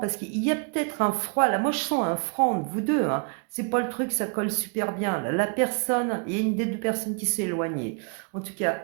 qu'il y a peut-être un froid, là moi je sens un froid entre vous deux, hein. C'est pas le truc, ça colle super bien. Là, la personne, il y a une des deux personnes qui s'est éloignée. En tout cas,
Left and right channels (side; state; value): left; quieter; 36.7 dB